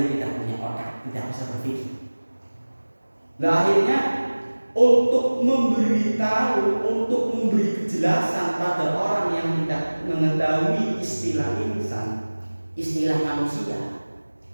tidak punya otak, tidak bisa berpikir. Nah, akhirnya untuk memberitahu, untuk memberi kejelasan pada orang yang tidak mengetahui istilah insan, istilah manusia,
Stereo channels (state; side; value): inverted; both; correlation -1.00